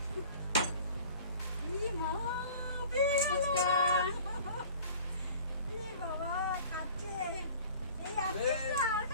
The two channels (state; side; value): inverted; both; correlation -0.46